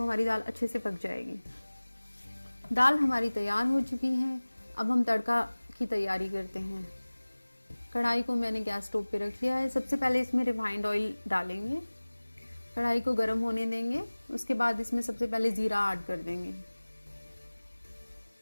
हमारी दाल अच्छे से पक जाएगी। दाल हमारी तैयार हो चुकी है। अब हम तड़का की तैयारी करते हैं। कढ़ाई को मैंने गैस स्टोव पे रख लिया है। सबसे पहले इसमें रिफाइंड ऑयल डालेंगे, कढ़ाई को गर्म होने देंगे। उसके बाद इसमें सबसे पहले जीरा ऐड कर देंगे।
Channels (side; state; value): both; inverted; correlation -1.00